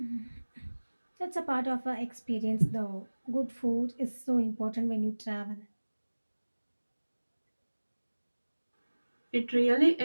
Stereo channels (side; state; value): both; inverted; correlation -1.00